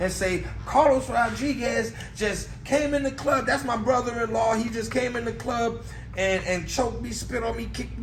say, Carlos Rodriguez just came in the club. That's my brother-in-law. He just came in the club and choked me, spit on me, kicked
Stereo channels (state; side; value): identical; both; correlation 1.00